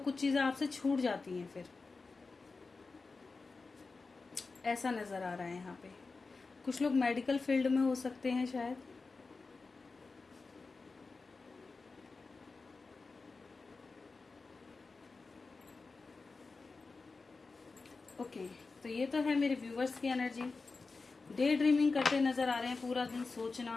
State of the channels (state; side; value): quieter; right; 4.0 dB